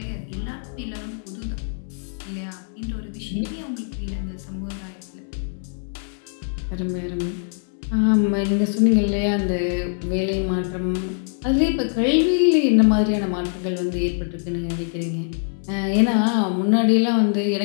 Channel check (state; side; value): silent; right; 63 dB below the other